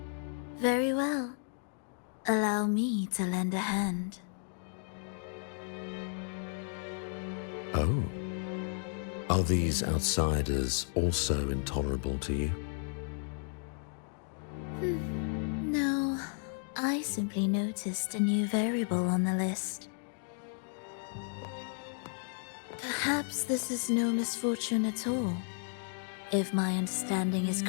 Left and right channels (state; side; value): silent; right; 55 dB below the other